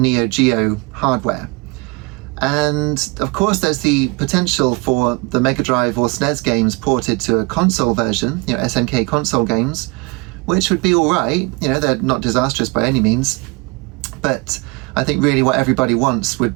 Geo hardware. And of course there's the potential for the Mega Drive or SNES games ported to a console version, SNK console games, which would be alright, they're not disastrous by any means, but I think really what everybody wants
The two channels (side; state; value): left; quieter; 27.2 dB